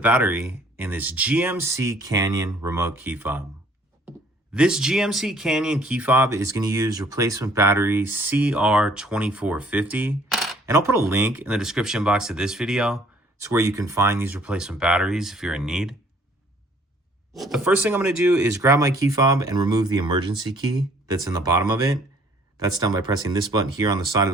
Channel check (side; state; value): both; normal; correlation 0.59